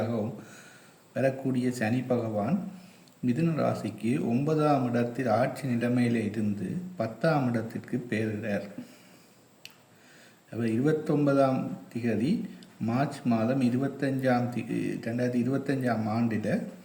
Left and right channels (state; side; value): identical; both; correlation 1.00